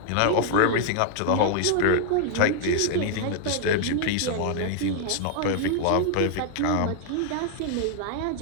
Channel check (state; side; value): different; both; correlation 0.00